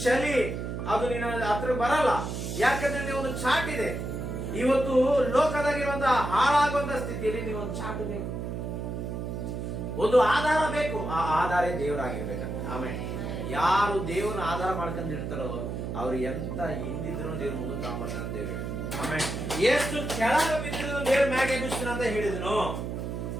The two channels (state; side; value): noise; right; hum, 4 dB below the sound